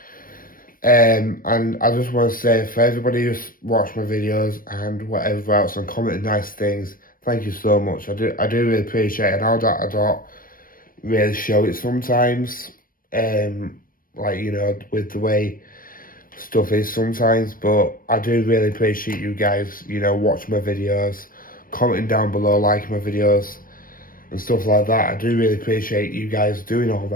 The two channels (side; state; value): right; late; 0.41 ms